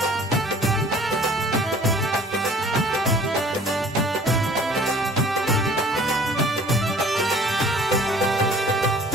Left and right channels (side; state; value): both; normal; correlation 0.50